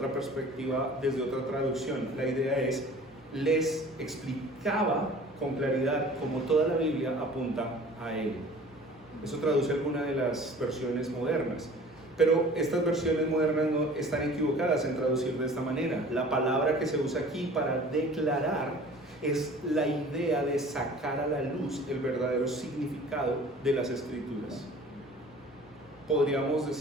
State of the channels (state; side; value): normal; both; correlation 0.46